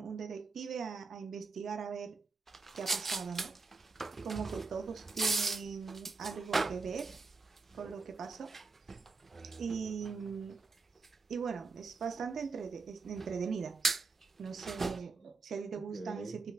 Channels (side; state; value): left; quieter; 4.2 dB